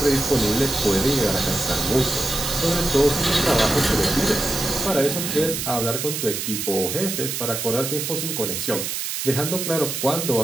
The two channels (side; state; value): right; noise; hiss, 3 dB below the sound